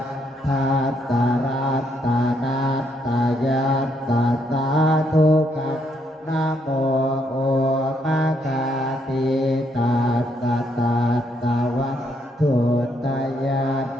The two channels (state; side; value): normal; both; correlation 0.74